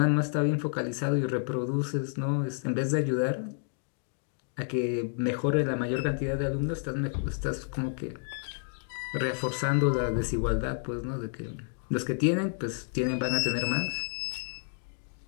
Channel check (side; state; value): right; silent; 58 dB below the other